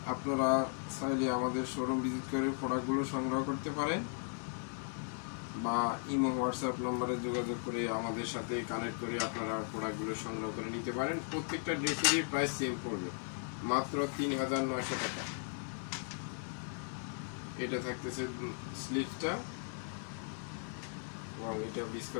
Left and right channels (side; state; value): right; silent; 53 dB below the other